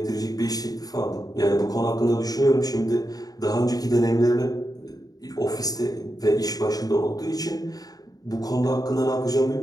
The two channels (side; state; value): right; late; 0.18 ms